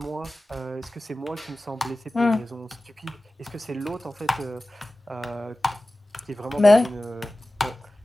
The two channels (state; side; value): normal; both; correlation 0.96